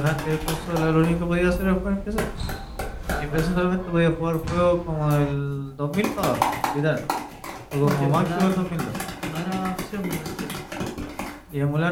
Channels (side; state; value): both; identical; correlation 1.00